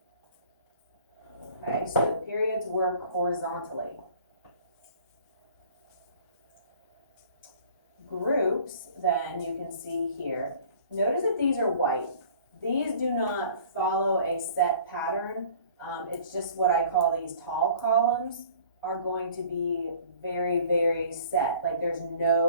Okay, so the periods work horizontally. Groups, then, you can see here. Notice that these are white. These do not follow a set pattern. It's just what I call these tall columns are going to be very, very set. Like there's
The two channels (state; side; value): inverted; both; correlation -0.50